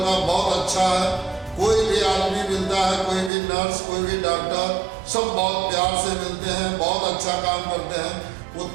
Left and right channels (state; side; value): drops out; left; at 3.3 s